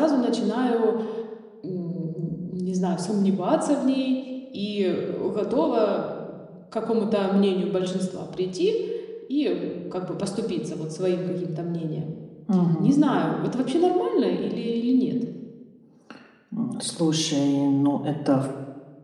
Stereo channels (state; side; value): identical; both; correlation 1.00